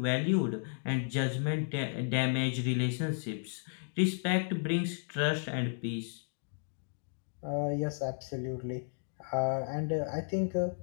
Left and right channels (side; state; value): right; silent; digital silence